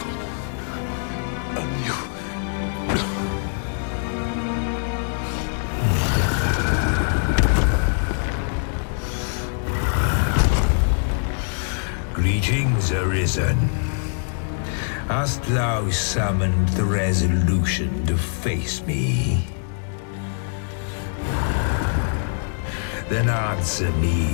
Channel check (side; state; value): right; silent; digital silence